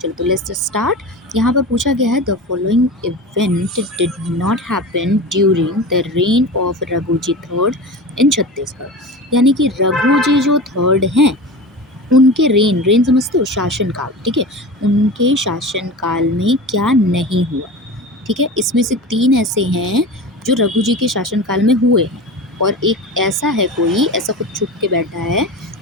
चलो तो लेट्स स्टार्ट। यहाँ पर पूछा गया है, the following event did not happen during the rain of Raghuji third in Chhattisgarh. यानी कि रघुजी जो थर्ड हैं उनके रेन समझते हो, शासनकाल। ठीक है, उनके शासनकाल में क्या नहीं हुआ। ठीक है, इसमें से 3 ऐसे हैं जो रघु जी के शासनकाल में हुए हैं और एक ऐसा है, कोई ऐसा कुछ छुप के बैठा है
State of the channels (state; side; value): normal; both; correlation 0.30